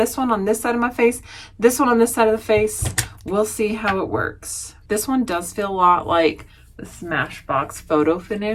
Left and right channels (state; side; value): identical; both; correlation 1.00